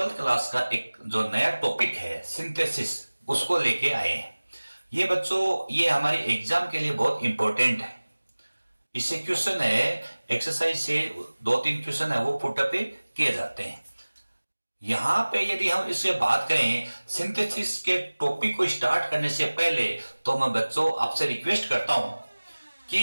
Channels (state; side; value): inverted; both; correlation -1.00